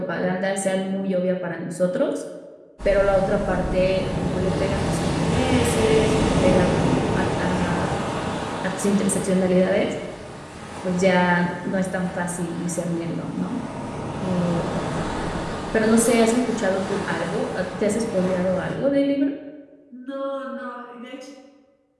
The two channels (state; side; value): identical; both; correlation 1.00